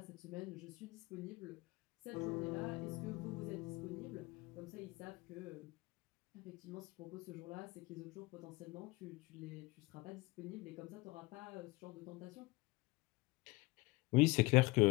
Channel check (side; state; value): right; quieter; 22.3 dB